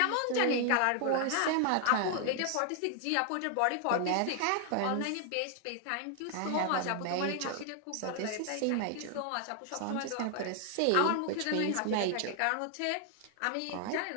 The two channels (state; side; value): different; both; correlation 0.00